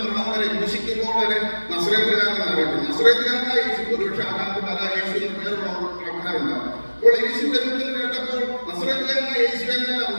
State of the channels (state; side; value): inverted; both; correlation -1.00